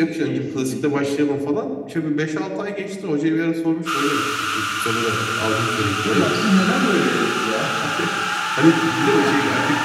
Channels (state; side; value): identical; both; correlation 1.00